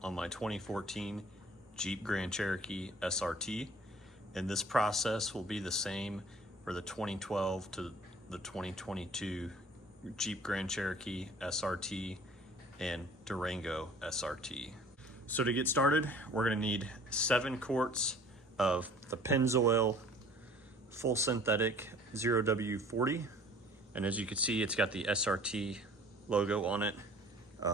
on my 2014 Jeep Grand Cherokee SRT, and this process will be the same for the 2012 to the 2022 Jeep Grand Cherokee SRT and Durango SRT. So to get started, we're going to need 7 quarts of the Pennzoil full synthetic 0W40. And as you can see, it's got the SRT logo on it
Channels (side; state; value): both; normal; correlation 0.50